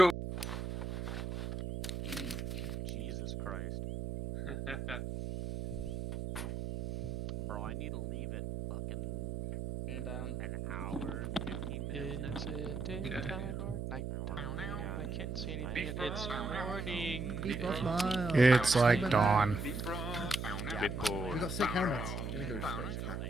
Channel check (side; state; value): right; noise; hum, 4 dB below the sound